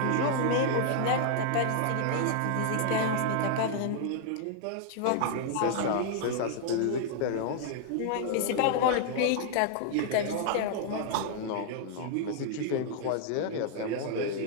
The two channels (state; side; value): different; both; correlation 0.00